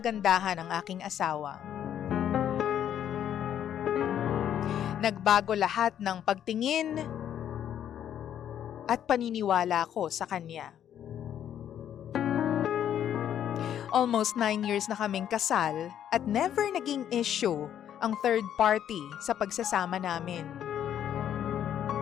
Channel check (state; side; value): quieter; right; 10.0 dB